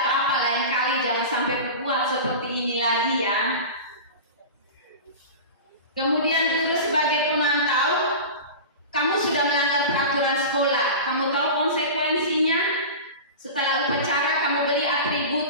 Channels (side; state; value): both; inverted; correlation -0.30